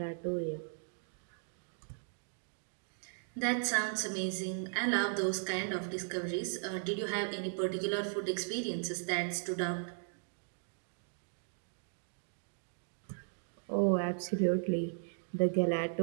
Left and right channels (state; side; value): silent; left; digital silence